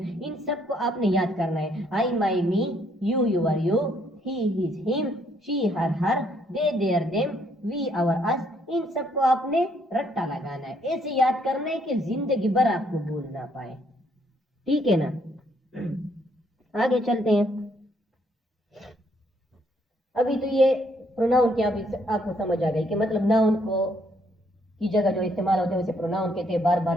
इन सबको आपने याद करना है। I, my, me, you, your, you, he, his, him, she, her, her, they, their, them, we, our, us. इन सबको आपने रट्टा लगाना है, ऐसे याद करना है कि जिंदगी भर आपको भूल ना पाए। ठीक है ना। आगे चलते हैं। अभी तो ये प्रोनाउन क्या आपको समझ आ गई कि मतलब नाउन को की जगह जो इस्तेमाल होते हैं उसे प्रोनाउन कहते हैं। बार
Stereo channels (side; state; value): both; normal; correlation 0.69